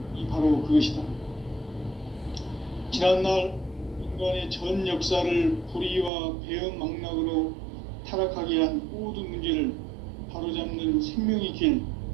바로 그것이다. 지난날 인간의 전 역사를 불의와 배음 망락으로 타락하게 한 모든 문제를 바로잡는 생명의 길,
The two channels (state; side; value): drops out; left; at 6.1 s